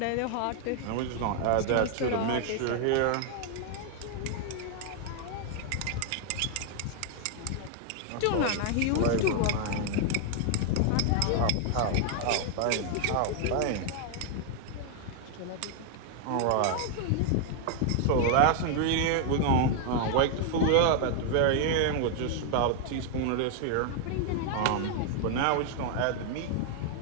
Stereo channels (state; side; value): different; both; correlation 0.00